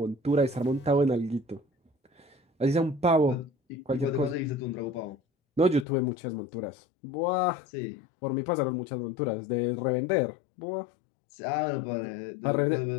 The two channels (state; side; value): drops out; right; at 5.9 s